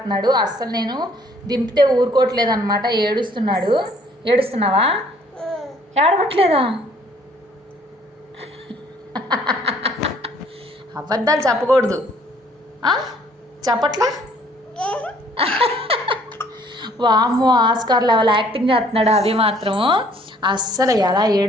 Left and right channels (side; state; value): both; normal; correlation 0.60